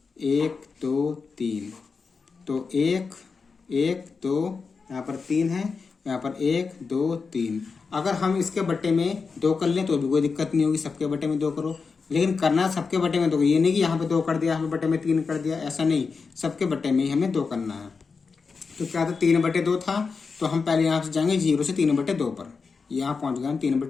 1 2 3, तो 1 1 2, यहाँ पर 3 है, यहाँ पर 1 2 3। अगर हम इसके बट्टे में 2 कर लें तो भी कोई दिक्कत नहीं होगी, सबके बट्टे में 2 करो। लेकिन करना सबके बट्टे में 2, ये नहीं कि यहाँ पे 2 कर दिया, यहाँ पे बट्टे में 3 कर दिया, ऐसा नहीं, सबके बट्टे में ही हमें 2 करना है। तो क्या था, 3/2 था, तो हम पहले यहाँ से जाएंगे 0 से 3/2 पर, यहाँ पहुंच गए हम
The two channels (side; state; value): right; quieter; 4.9 dB